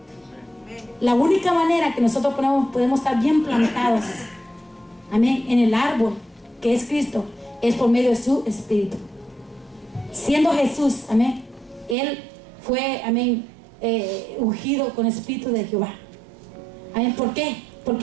La única manera que nosotros podemos estar bien plantados, amén, en el árbol que es Cristo, es por medio de su espíritu. Siendo Jesús, amén, Él fue, amén, ungido con el espíritu de Jehová. Amén. ¿Por qué?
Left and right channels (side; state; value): left; drops out; at 12.0 s